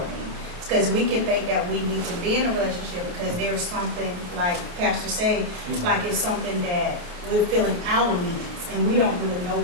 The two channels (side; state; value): left; late; 29 ms